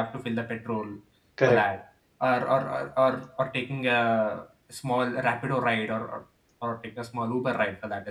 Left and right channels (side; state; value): both; identical; correlation 1.00